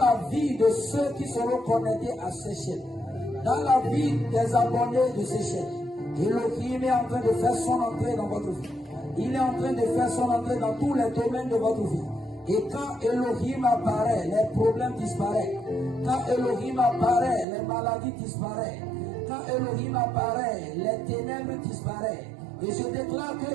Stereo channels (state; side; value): drops out; left; at 17.4 s